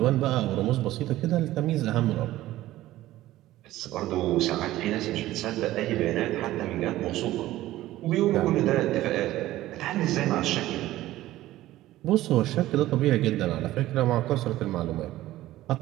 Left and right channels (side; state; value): left; quieter; 15.5 dB